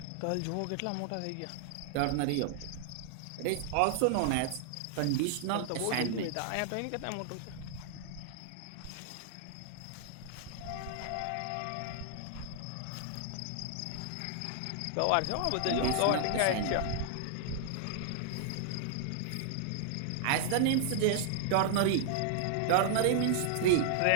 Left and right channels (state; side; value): different; both; correlation -0.01